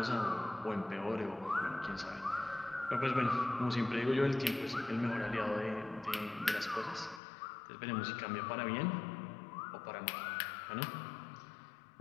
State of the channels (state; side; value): drops out; right; at 7.2 s